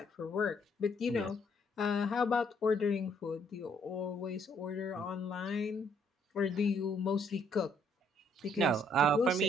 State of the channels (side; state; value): both; normal; correlation 0.67